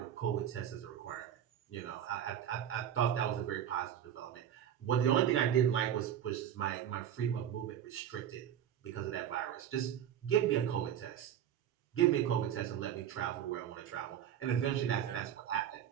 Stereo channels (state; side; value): quieter; left; 9.9 dB